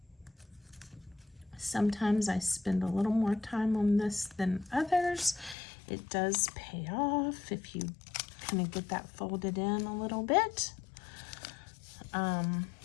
Sometimes I spend a little more time on this than others. It does pay off if you kind of get that folded in a little bit.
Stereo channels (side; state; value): right; drops out; at 5.6 s